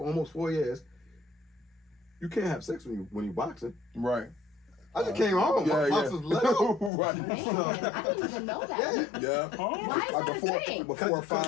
almost 4 years, you can't have sex when you boxing? Right. I just came home. My box was let out. Right. Man, I didn't even know that. Yeah. Why is that a thing? Before a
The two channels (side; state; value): right; drops out; at 6.9 s